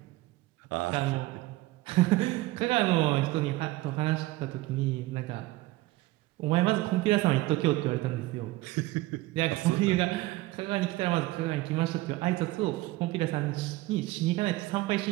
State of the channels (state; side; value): quieter; left; 18.8 dB